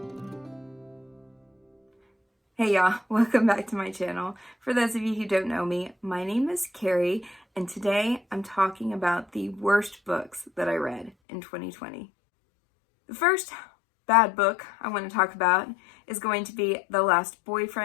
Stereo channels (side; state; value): right; drops out; at 11.1 s